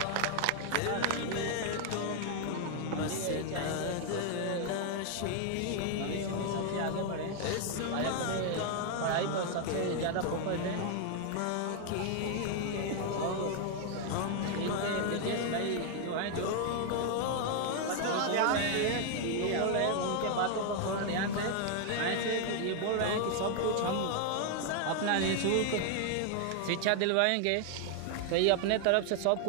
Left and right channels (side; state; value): both; different; correlation 0.00